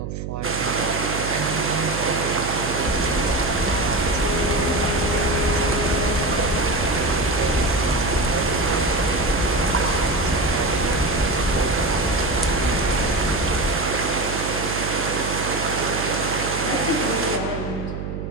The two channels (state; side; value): noise; right; hum, 6 dB below the sound